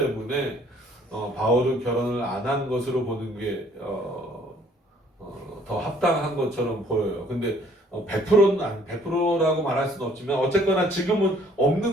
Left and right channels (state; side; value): normal; both; correlation 0.60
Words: 바울은 결혼을 안 한 것으로 보는 게 더 합당한 것처럼 보여요. 근데 100%는 100%라고 말할 수는 없지만 어쨌거나 지금은